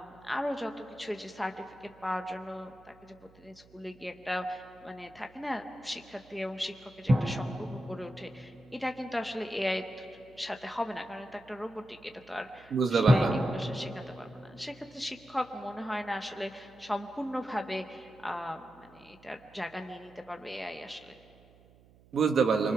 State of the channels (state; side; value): noise; right; hum, 26 dB below the sound